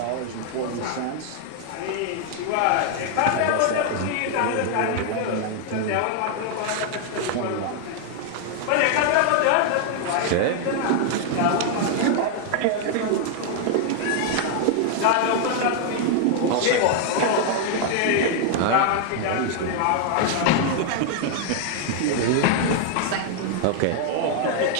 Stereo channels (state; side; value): different; both; correlation 0.00